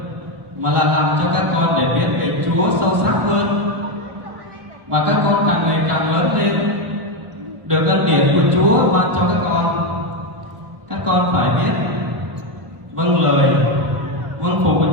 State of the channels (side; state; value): left; late; 1.0 ms